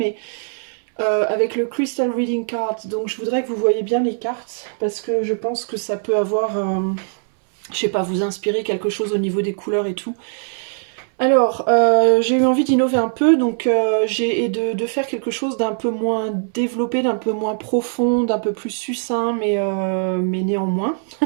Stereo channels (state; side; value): silent; left; 65 dB below the other